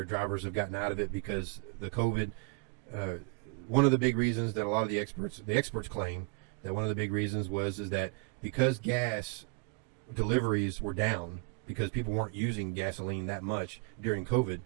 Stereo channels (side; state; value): left; quieter; 33.5 dB